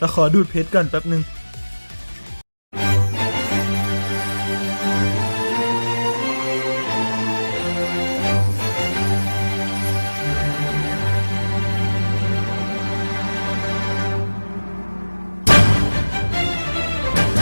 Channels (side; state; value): both; inverted; correlation -1.00